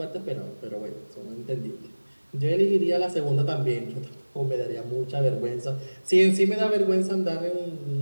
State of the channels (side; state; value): both; inverted; correlation -1.00